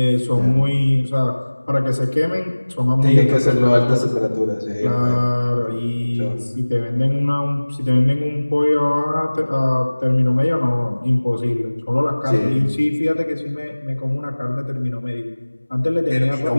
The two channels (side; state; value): both; inverted; correlation -1.00